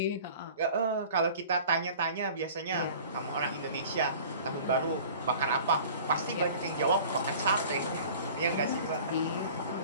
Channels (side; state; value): both; inverted; correlation -0.45